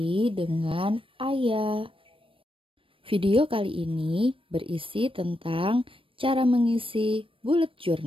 dengan Ayah. Video kali ini berisi tentang cara mengisi bullet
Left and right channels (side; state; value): left; late; 0.26 ms